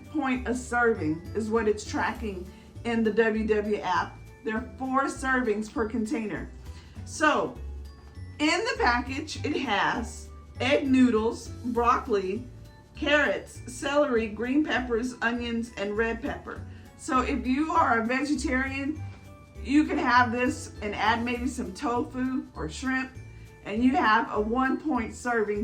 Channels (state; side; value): identical; both; correlation 1.00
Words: point a serving is what it's tracking in the WW app. There are 4 servings per container. So in the package, it has egg noodles, broccoli, carrots, celery, green peppers, onions, and red pepper. So if you are a vegetarian, you can have this and add maybe some tofu or shrimp, and you have a 1 point